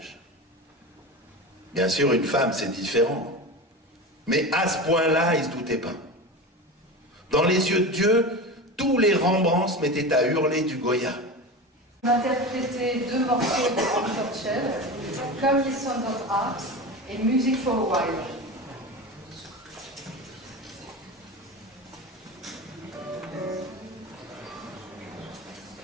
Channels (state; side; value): normal; both; correlation 0.27